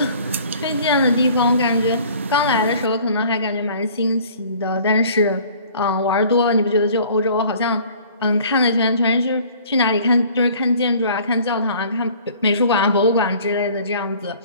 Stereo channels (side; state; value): both; inverted; correlation -0.51